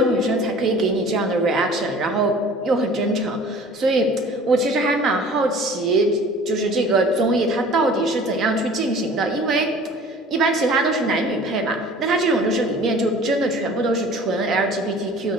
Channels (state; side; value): normal; both; correlation 0.46